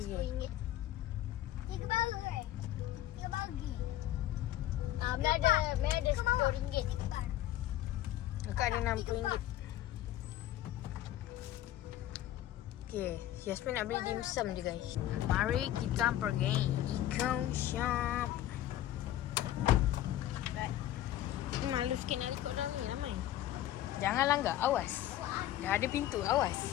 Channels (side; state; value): right; quieter; 13.2 dB